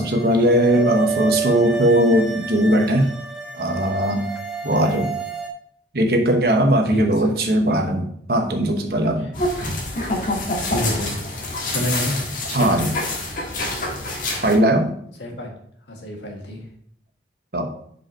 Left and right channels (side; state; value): both; normal; correlation 0.45